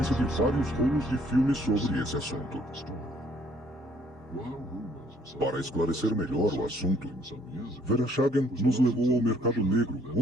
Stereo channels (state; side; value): normal; both; correlation 0.63